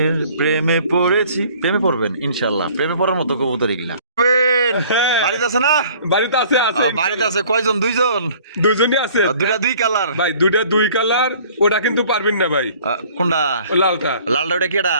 প্রেমে পড়েছি। প্রেমে পড়বেন ইনশাআল্লাহ, প্রেমে পড়ার মতো কবুতর এগুলা। হ্যাঁ। বাড়িতে আছে না? বাড়িতে আছে আছে। বাড়িতে আছে কয়জন? 2 জন? দুজনই আছে। দুইটা 2 কালার? ভাই দুইটা 2 কালার, ওটা কিন্তু পারবেন না ভাই। কোনটা? ও লালটা। লালটা ওটা কেডা?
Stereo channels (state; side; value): inverted; both; correlation -0.53